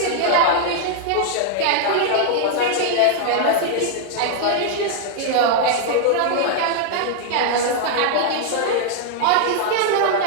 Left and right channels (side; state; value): both; different; correlation 0.00